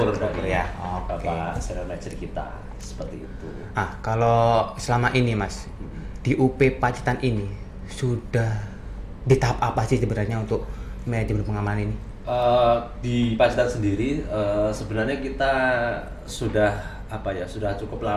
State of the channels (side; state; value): both; identical; correlation 1.00